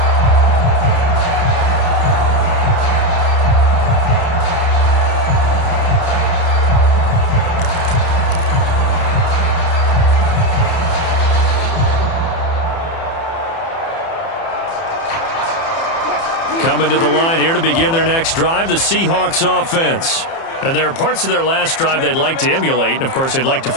Coming to the line here to begin their next drive, the Seahawks offense. And there are parts of their last drive they'd like to emulate. And, of course, they'd like to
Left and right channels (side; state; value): right; late; 30 ms